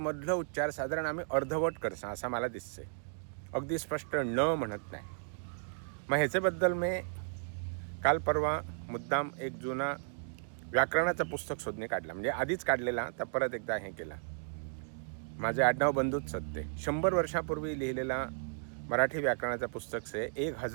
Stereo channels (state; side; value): silent; left; digital silence